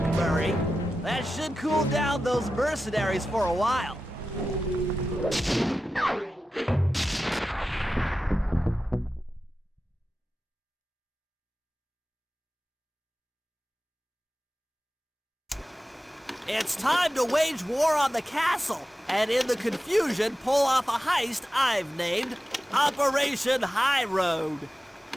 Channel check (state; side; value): normal; both; correlation 0.93